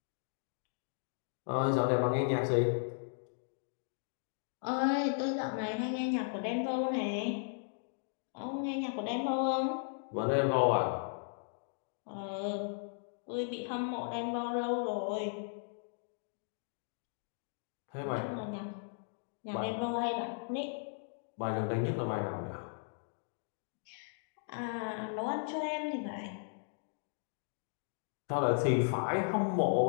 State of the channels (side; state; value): right; silent; digital silence